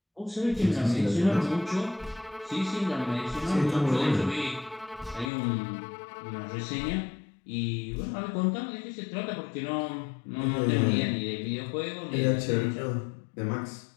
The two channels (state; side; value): drops out; right; at 5.3 s